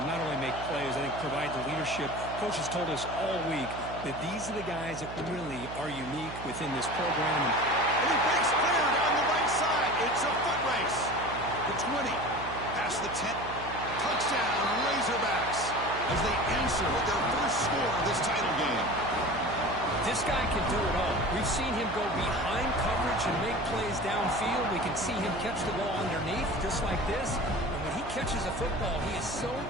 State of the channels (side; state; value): right; noise; hum, 11 dB below the sound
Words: not only make plays, I think provide the leadership. Coaches told us all week that these are the guys that really are unique within this program. And he breaks clear down the right side. It's a foot race. The 20, past the 10. Touchdown, Razorbacks, as they answer with their first score of this title game. This guy can do it all. We've seen him go behind coverage and make plays downfield. We can see him catch the ball underneath, just like this. And when he catches a football, he is so